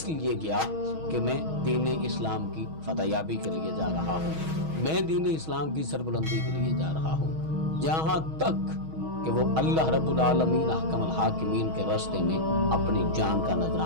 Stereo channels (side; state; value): left; late; 6.3 ms